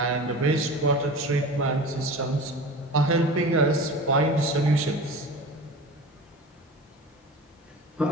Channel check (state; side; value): normal; both; correlation 0.34